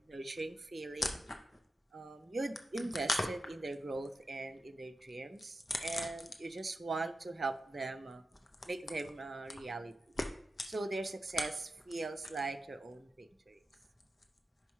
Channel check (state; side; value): normal; both; correlation 0.90